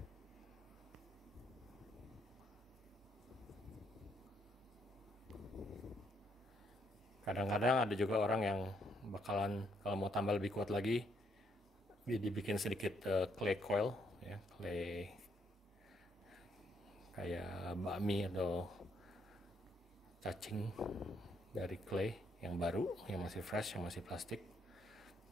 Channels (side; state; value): both; normal; correlation 0.73